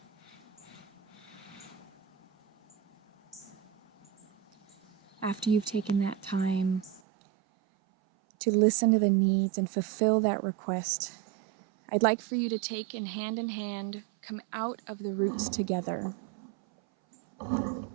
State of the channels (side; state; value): left; drops out; at 7.0 s